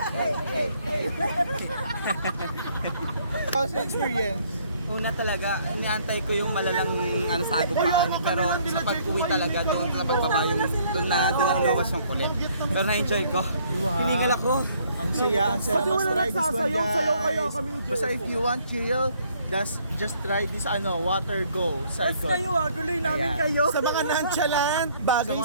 How's the experience? Una talaga, iniantay ko yung malalang sagupaan. Pero sa pag-uwi talaga, doon sa pagbaba yung doon na luwas yung kulit. Pero na-enjoy ko. Hiningal ako. Ang saya Pati mas wala try this one nagsasayaw-sayaw kaya guys. kami ni Basta Jericho. if you want chill, just try this water go cycle. guloy namin Ayan. kayo. Sa mga nonchalant, Sa bagay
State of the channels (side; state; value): both; inverted; correlation -0.64